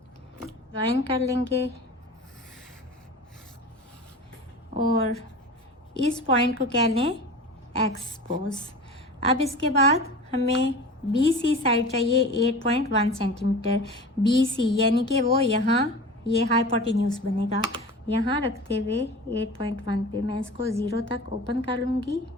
ज्वाइन कर लेंगे और इस पॉइंट को कह लें एक्स पोज। अब इसके बाद हमें बी सी साइड चाहिए 8.1 सेंटीमीटर। बी सी यानी कि वो यहाँ ये हाइपोटेन्यूज बनेगा। यहाँ रखते हुए 8.1 पे मैं इसको 0 तक ओपन कर लूँगी।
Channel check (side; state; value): both; normal; correlation 0.35